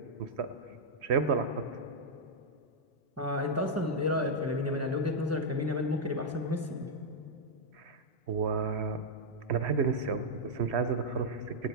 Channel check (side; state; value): both; normal; correlation -0.04